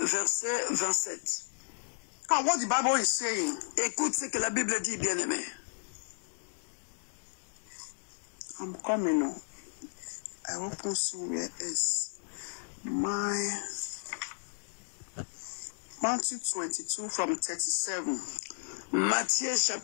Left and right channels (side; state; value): right; silent; 55 dB below the other